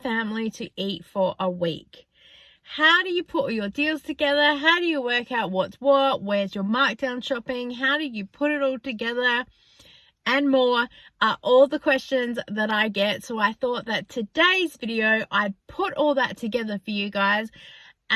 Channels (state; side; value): identical; both; correlation 1.00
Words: to eat for a week? How do you put all your deals together? How do you work out what's what? Where's your markdown shopping? How do you put it all together? And more are all the questions that I get. So I thought that today's video, I'd put all that together for you guys